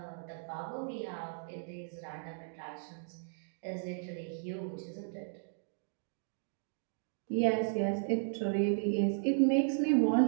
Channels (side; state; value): left; silent; digital silence